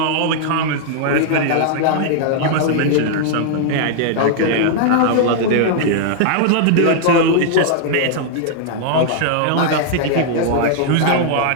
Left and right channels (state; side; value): different; both; correlation -0.01